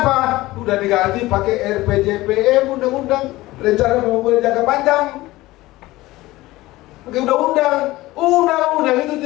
Udah diganti pakai RPJPM, undang-undang rencana pembangunan jangka panjang. Pakai undang-undang itu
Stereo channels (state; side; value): quieter; right; 18.5 dB